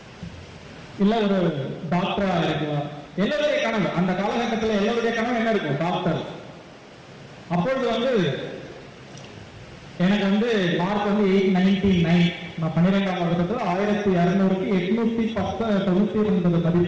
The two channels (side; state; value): both; identical; correlation 1.00